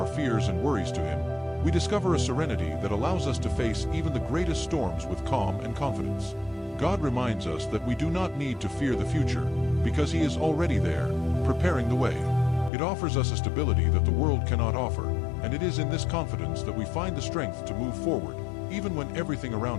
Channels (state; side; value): drops out; right; at 12.7 s